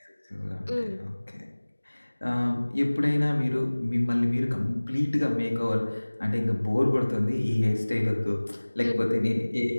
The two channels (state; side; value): inverted; both; correlation -1.00